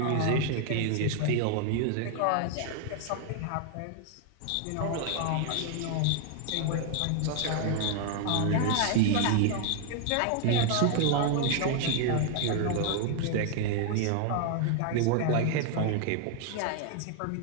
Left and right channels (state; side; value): different; both; correlation 0.00